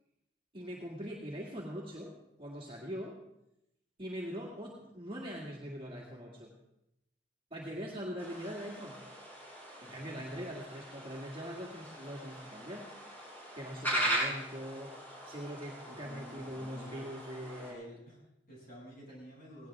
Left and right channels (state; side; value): normal; both; correlation 0.36